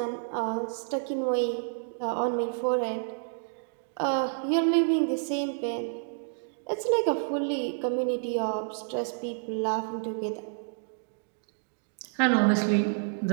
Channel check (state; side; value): silent; left; digital silence